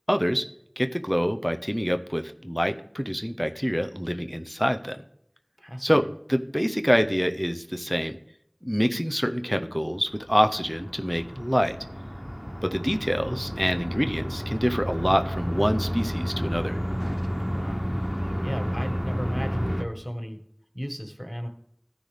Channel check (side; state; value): both; identical; correlation 1.00